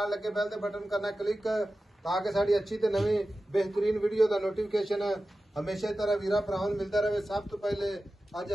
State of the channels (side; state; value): both; normal; correlation 0.94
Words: लगे बैल दे बटन करना क्लिक ताकि साडी अच्छी ते नवी बेहतरीन वीडियो दा नोटिफिकेशन हमेशा की तरह वीरा भरावां नूं मिलदा रहे। सब तो पहले अज